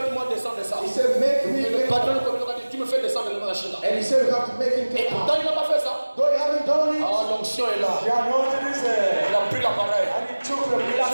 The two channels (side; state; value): both; inverted; correlation -1.00